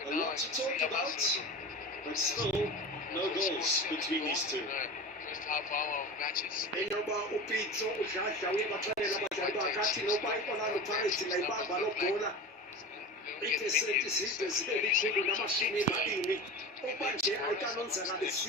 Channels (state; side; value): normal; both; correlation 0.31